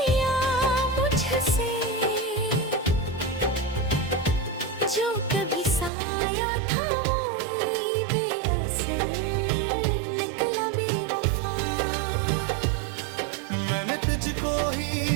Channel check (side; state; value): left; drops out; at 5.9 s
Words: मुझसे जो कभी साया था वो ही बेअसर निकला बेवफा मैंने तुझको ही